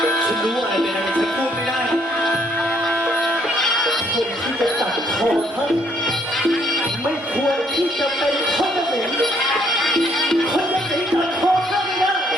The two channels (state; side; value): normal; both; correlation 0.67